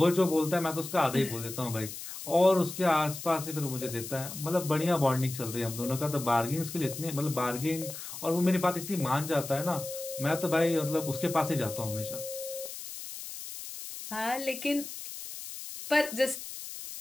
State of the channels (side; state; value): left; noise; hiss, 10 dB below the sound